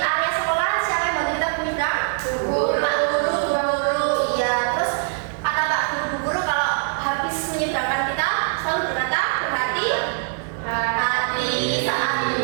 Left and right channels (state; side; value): silent; left; digital silence